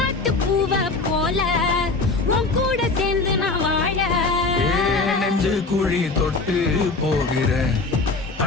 பூவ போல உன் கூட சேர்ந்து நான் வாழ. நெஞ்சு குழி தொட்டு போகிற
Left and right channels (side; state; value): right; quieter; 3.7 dB